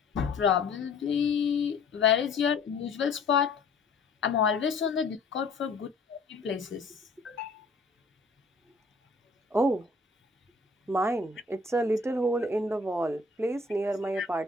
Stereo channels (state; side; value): quieter; right; 3.6 dB